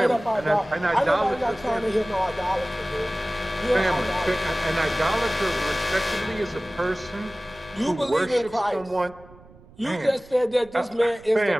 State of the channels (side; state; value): right; noise; rumble, 23 dB below the sound